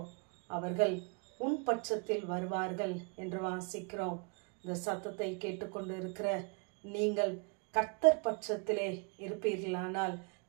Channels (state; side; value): quieter; left; 36.0 dB